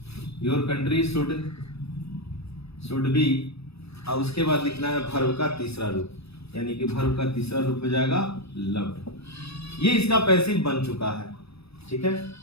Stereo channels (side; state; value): right; late; 0.78 ms